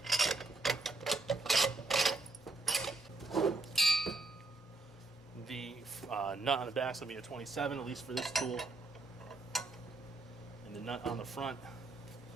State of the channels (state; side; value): quieter; left; 3.2 dB